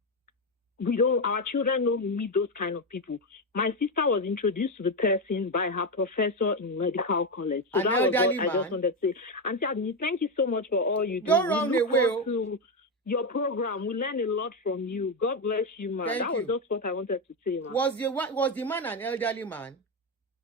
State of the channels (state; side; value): normal; both; correlation 0.10